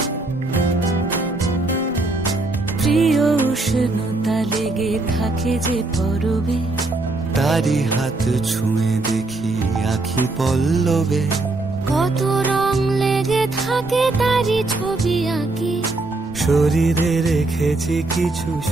প্রিয় উষ্ণতা লেগে থাকে যে পরবে, তারি হাত ছুঁয়ে দেখি আখি পল্লবে, কত রং লেগে থাকে তারি ছবি আঁকি, শরীরে রেখেছি কিছু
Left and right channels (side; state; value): left; quieter; 3.1 dB